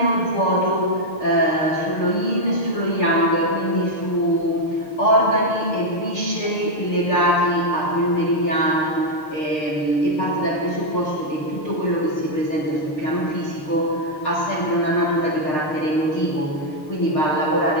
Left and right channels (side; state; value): right; late; 6.7 ms